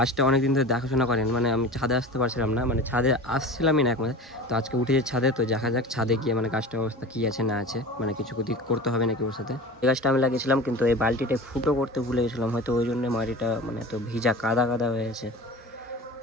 অনেক দিন ধরে দেখাশোনা করেন, মানে আমি ছাদে আসতে পারছিলাম না, মানে ছাদে আসছিলামই না একমাত্র। তো আজকে উঠেছে ছাদে, তো দেখা যাক ছাদে গিয়ে মানে গাছটার অবস্থা কী আছে না আছে, মানে কিছু করতে হবে নাকি ওর সাথে। এই গাছটা আমি লাগিয়েছিলাম, কিন্তু এই বালতিটা ফুটো করতে ভুলে গেছিলাম, হয়তো ওই জন্য মাটিটা মানে এত ভিজা কাদা হয়ে আছে। তো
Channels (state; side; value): normal; both; correlation 0.34